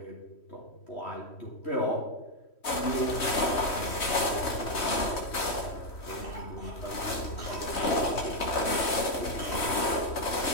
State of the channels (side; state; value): right; late; 3.1 ms